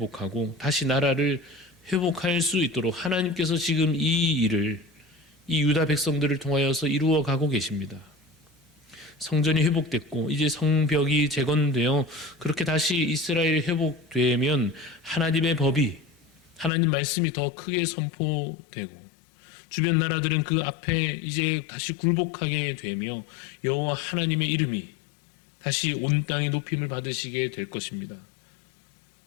다시 나라를 회복할 수 있도록 하나님께서 지금 이 일을 이 유다 백성들을 통하여서 이루어 가고 계십니다. 성전이 회복됐고 이제 성벽이 재건되어 그렇게 다시 이스라엘이 회복되면 하나님의 법이 하나님 말씀이 더 크게 선포되고 주변 나라들은 그 앞에 이제 다시 굴복하게 되며 여호와 하나님의 이름이 다시 온 땅에 높임을 받으시게 될 것입니다.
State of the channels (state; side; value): drops out; right; at 16.7 s